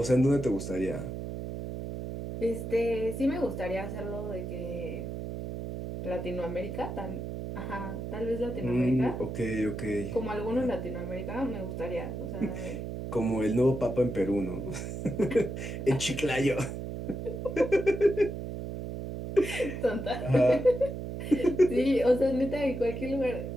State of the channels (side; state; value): right; noise; hum, 6 dB below the sound